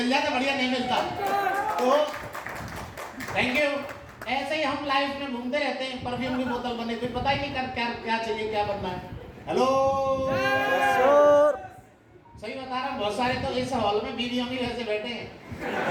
जाता, बढ़िया नहीं मिलता। तो थैंक यू। ऐसे ही हम लाइफ में घूमते रहते हैं, परफ्यूम की बोतल बने, फिर पता ही नहीं कर क्या क्या चाहिए, क्या बनना है। हेलो सर, सही बता रहा हूँ, बहुत सारे तो इस हॉल में बीवियों भी वैसे बैठे हैं।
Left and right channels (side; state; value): both; identical; correlation 1.00